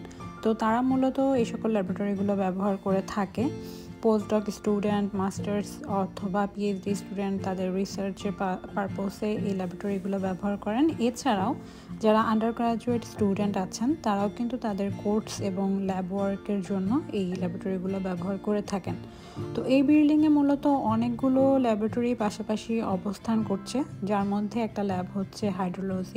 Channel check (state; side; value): identical; both; correlation 1.00